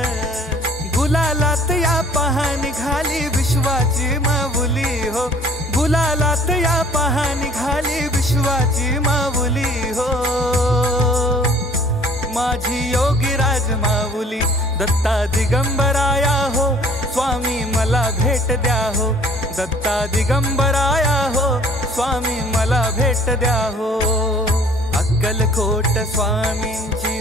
गुलालात या पहा निघाली विश्वाची माऊली हो, गुलालात या पहा निघाली विश्वाची माऊली हो। माझी योगीराज माऊली दत्ता दिगंबराया हो, स्वामी मला भेट द्या हो। दत्ता दिगंबराया हो, स्वामी मला भेट द्या हो। अक्कलकोट स्वामींची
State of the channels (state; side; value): normal; both; correlation 0.53